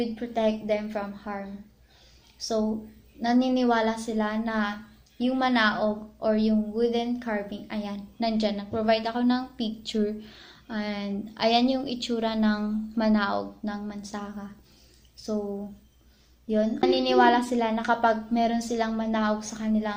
protect them from harm. So, naniniwala sila na yung manaog or yung wooden carving, ayan, nandyan. Nag-provide ako ng picture. And ayan yung itsura ng manaog ng Mansaka. So, yun. Naniniwala sila na kapag meron silang manaog sa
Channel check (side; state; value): both; identical; correlation 1.00